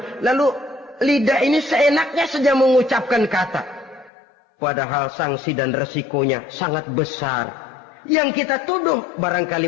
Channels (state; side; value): drops out; right; at 4.1 s